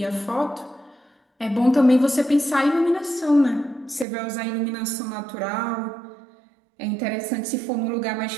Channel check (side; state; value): left; drops out; at 4.0 s